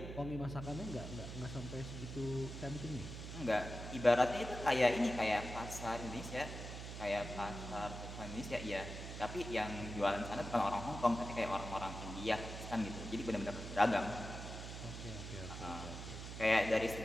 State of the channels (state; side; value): noise; right; hum, 8 dB below the sound